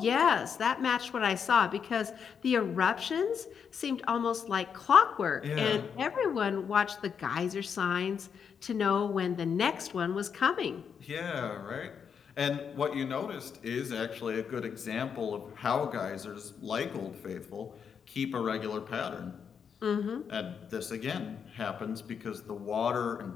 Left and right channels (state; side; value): quieter; right; 7.0 dB